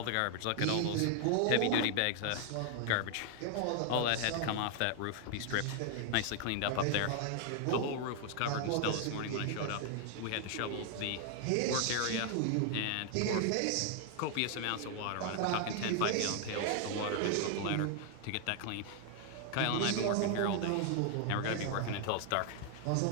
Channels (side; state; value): both; different; correlation 0.00